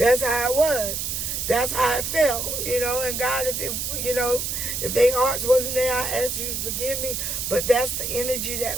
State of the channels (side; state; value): right; noise; hiss, 2 dB below the sound